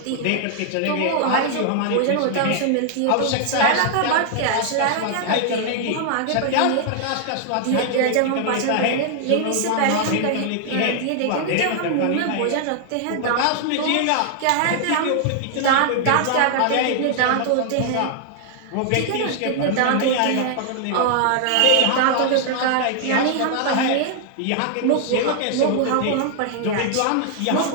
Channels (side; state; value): both; different; correlation 0.00